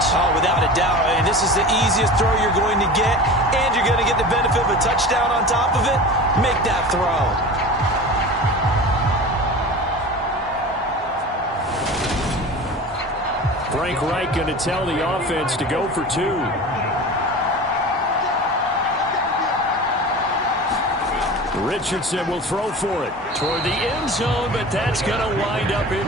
Oh, without a doubt. And this is the easiest throw you're going to get, and you're going to get the benefit of a touchdown on top of it. Make that throw. Frank Reich going to tell the offense to go for 2. Richardson will throw for it toward the end zone, but that's going to wind up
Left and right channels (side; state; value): both; normal; correlation 0.34